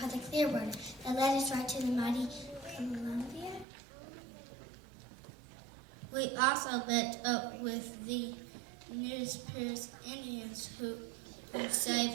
the Clearwater that led us right to the mighty Columbia. We also met up with the Nespiers Indians who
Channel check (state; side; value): drops out; left; at 3.7 s